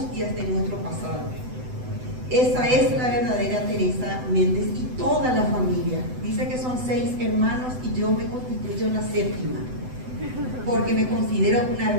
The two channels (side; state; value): left; late; 7.9 ms